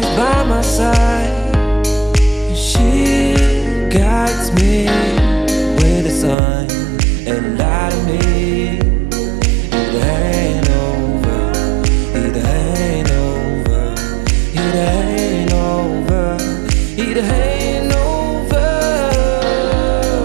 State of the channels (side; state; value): left; drops out; at 6.4 s